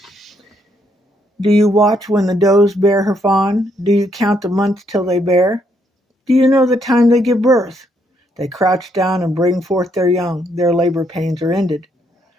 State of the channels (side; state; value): both; normal; correlation 0.73